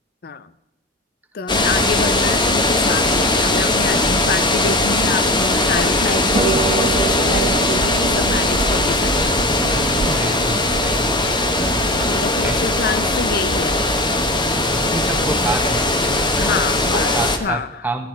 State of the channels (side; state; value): both; normal; correlation 0.28